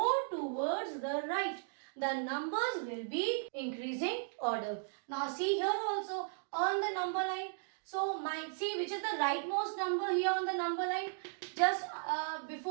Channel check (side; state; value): left; silent; digital silence